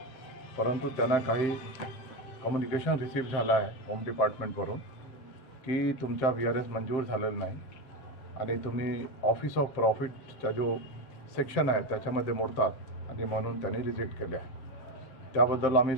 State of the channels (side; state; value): right; late; 7.6 ms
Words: परंतु त्यांना काही कम्युनिकेशन रिसीव्ह झाला आहे होम डिपार्टमेंटवरून की तुमचा VRS मंजूर झालेला नाही आणि तुम्ही ऑफिस ऑफ प्रॉफिटचा जो सेक्शन आहे त्याच्यामध्ये मोडतात आणि म्हणून त्यांनी रिजेक्ट केले आहे। त्याबद्दल आम्ही